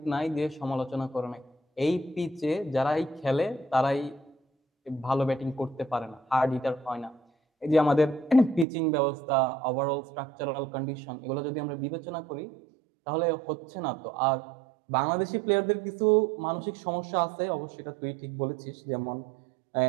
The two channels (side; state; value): left; drops out; at 8.7 s